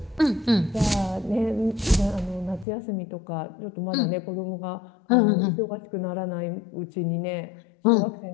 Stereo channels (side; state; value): right; drops out; at 2.7 s